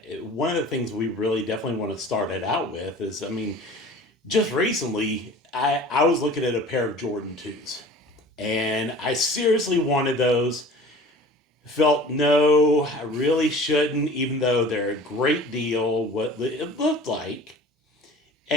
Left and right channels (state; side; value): normal; both; correlation 0.43